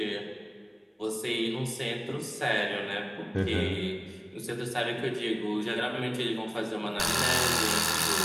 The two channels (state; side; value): identical; both; correlation 1.00